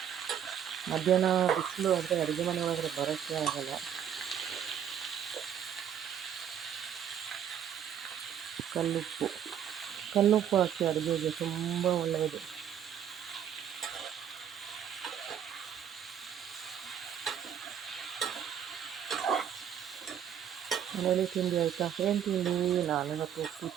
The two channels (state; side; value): quieter; left; 9.1 dB